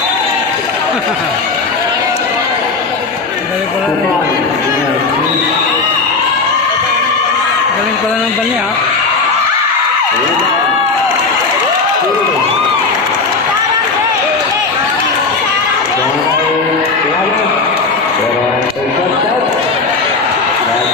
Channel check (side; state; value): right; quieter; 4.2 dB